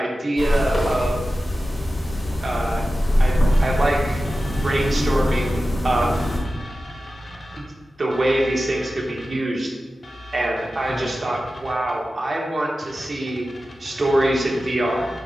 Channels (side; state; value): both; normal; correlation 0.94